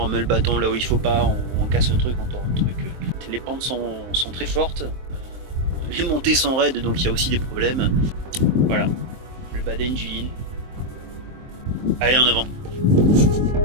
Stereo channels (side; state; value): left; late; 23 ms